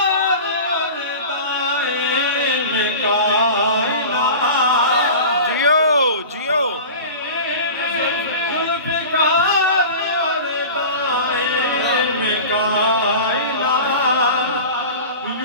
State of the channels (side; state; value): both; inverted; correlation -0.34